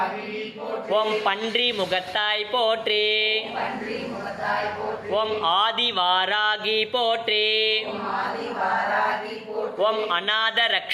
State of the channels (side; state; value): both; identical; correlation 1.00